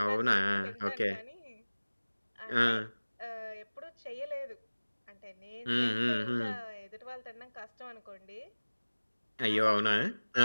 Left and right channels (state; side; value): inverted; both; correlation -1.00